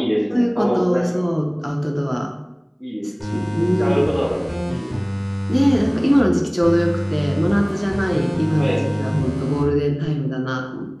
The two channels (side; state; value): both; identical; correlation 1.00